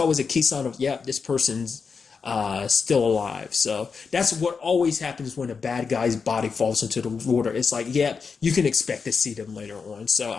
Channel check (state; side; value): quieter; right; 5.4 dB